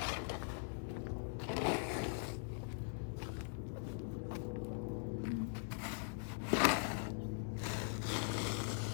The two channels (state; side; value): silent; right; digital silence